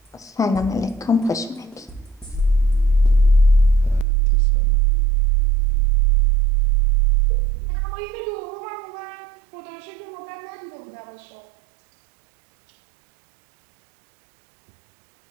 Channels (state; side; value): drops out; left; at 4.0 s